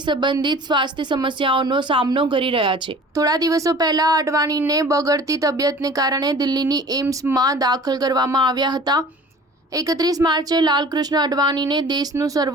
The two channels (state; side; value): normal; both; correlation 0.45